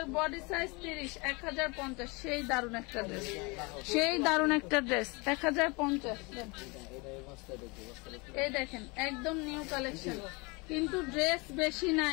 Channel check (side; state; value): right; quieter; 27.8 dB